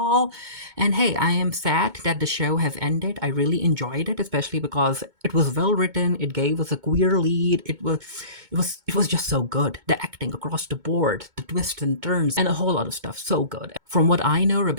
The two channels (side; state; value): left; late; 2.2 ms